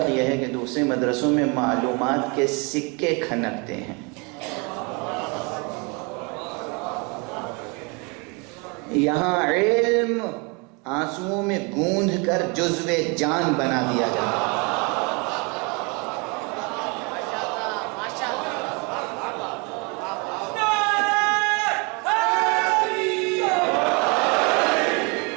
یہ ہے کہ دوسرے مدرسوں میں معلومات کے سکے کھنکتے ہیں، یہاں علم آنسوؤں میں گوندھ کر جزو جان بنا دیا جاتا ہے.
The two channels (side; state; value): left; quieter; 31.1 dB